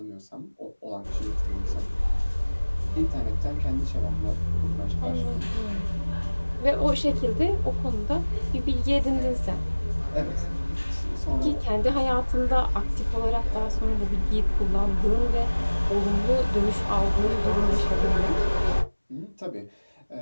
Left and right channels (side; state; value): both; inverted; correlation -1.00